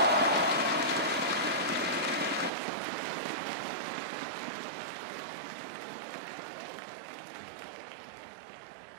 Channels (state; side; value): drops out; left; at 2.5 s